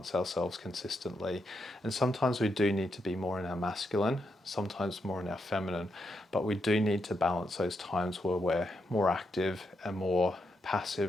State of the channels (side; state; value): both; normal; correlation 0.82